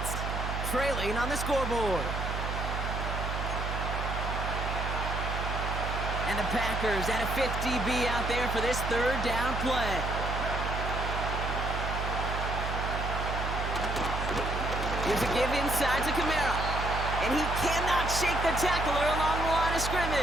trailing on the scoreboard. And the Packers at a 50 DB out there for this 3rd down play. Here's a give inside to Kamara. And he cannot shake the tackler along the line of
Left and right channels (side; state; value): right; noise; hum, 3 dB below the sound